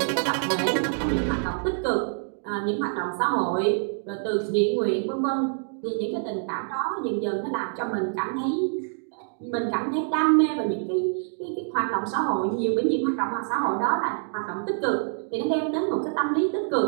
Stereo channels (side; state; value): left; silent; 60 dB below the other